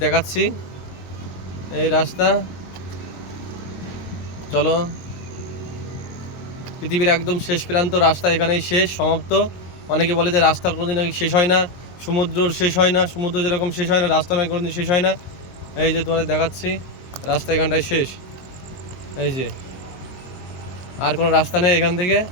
দেখাচ্ছি এই রাস্তা। চলো, পৃথিবীর একদম শেষ প্রান্ত রাস্তা এখানেই শেষ সমাপ্ত। অনেকে বলে যে রাস্তার কোনোদিন নাকি শেষ হয় না, সমুদ্রর শেষ হয় না, সমুদ্র যেরকম শেষ হয় না রাস্তা নাকি কোনোদিন শেষ হয় না। এই যে তোমাদের দেখাচ্ছি রাস্তা এখানটায় শেষ। এই যে আর কোনো রাস্তা নেই এখান থেকে।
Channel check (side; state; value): right; late; 23 ms